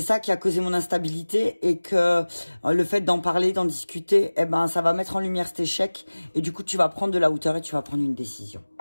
qui a causé mon instabilité, et que le fait d'en parler, d'en discuter, ça va mettre en lumière cet échec, et du coup, tu vas prendre de la hauteur et tu vas prendre une décision.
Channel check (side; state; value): both; inverted; correlation -1.00